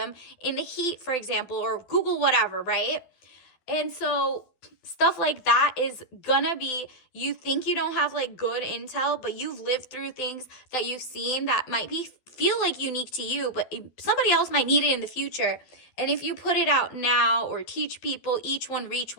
in the heat, for example, or Google whatever, right? And so stuff like that is gonna be, you think you don't have like good intel, but you've lived through things that you've seen that might feel like unique to you, but somebody else might need it in the future. And if you put it out now or teach people, each one reach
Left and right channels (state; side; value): late; right; 12 ms